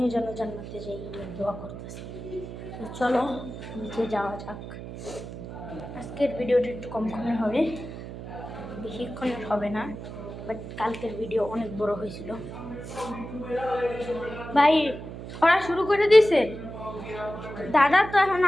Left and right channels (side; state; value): right; noise; hum, 10 dB below the sound